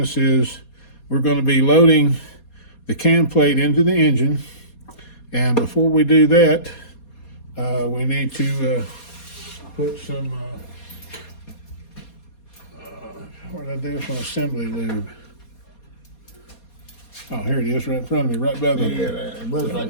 is we're going to be loading the cam plate into the engine. And before we do that, we need to put some, what did I do? Some assembly lube. Oh, here it is, right in front of me, right by the it was right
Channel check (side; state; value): right; late; 4.2 ms